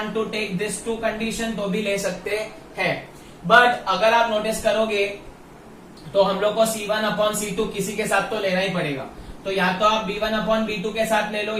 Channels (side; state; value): both; identical; correlation 1.00